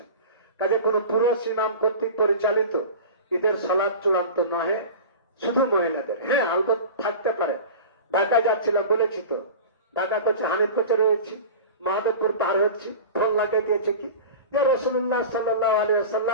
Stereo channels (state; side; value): inverted; both; correlation -0.33